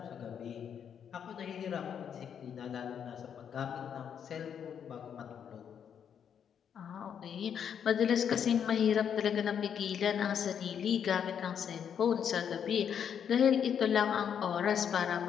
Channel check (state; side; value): quieter; right; 8.1 dB